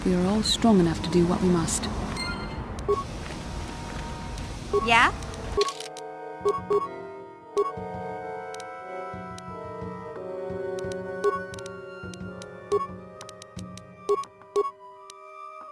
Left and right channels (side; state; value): both; identical; correlation 1.00